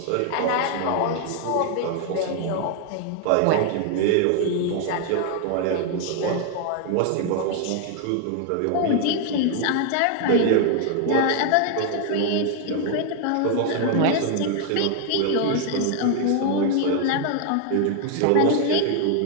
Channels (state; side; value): different; both; correlation 0.00